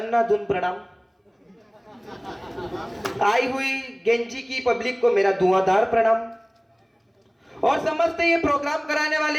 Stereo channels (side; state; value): both; identical; correlation 1.00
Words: प्रणाम। आई हुई गेंजी की पब्लिक को मेरा धुआंधार प्रणाम, और समस्त ये प्रोग्राम कराने